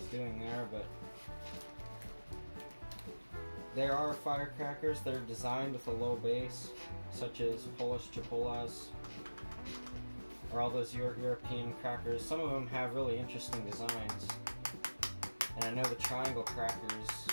doing there, but there are firecrackers that are designed with a low base, such as Polish Chipolas or all those European crackers. Some of them have really interesting designs, and I know the triangle crackers,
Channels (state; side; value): inverted; both; correlation -1.00